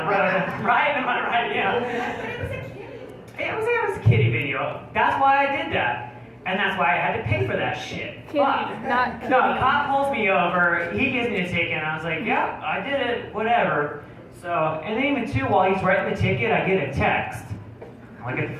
road, right? Am I right? Yeah. But it was a kitty. It was a kitty video. That's why I did that. And that's why I had to pay for that shit. Kitty, not kitty. No, a cop pulls me over, he gives me a ticket, and I was like, yeah, I did it, whatever. So, and then even too, while he's writing the ticket, I get a text. I look at the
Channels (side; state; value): both; identical; correlation 1.00